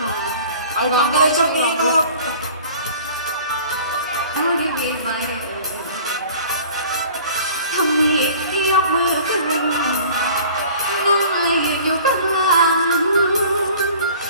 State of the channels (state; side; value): inverted; both; correlation -0.46